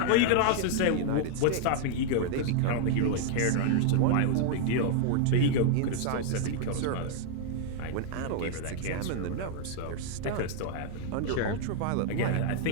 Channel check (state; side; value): different; both; correlation 0.00